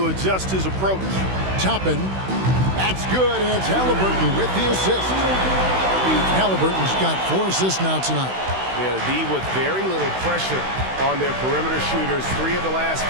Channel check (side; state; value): left; late; 16 ms